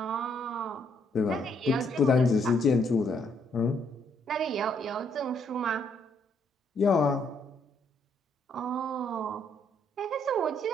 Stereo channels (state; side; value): normal; both; correlation 0.71